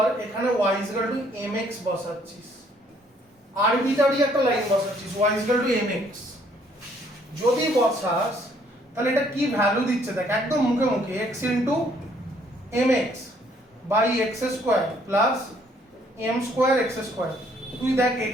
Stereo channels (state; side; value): normal; both; correlation 0.64